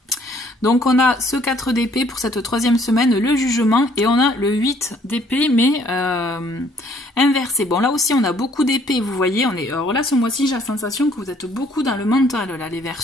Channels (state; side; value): normal; both; correlation 0.62